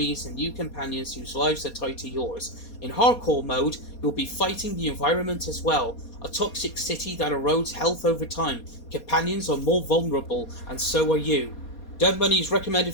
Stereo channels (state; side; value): late; right; 4.2 ms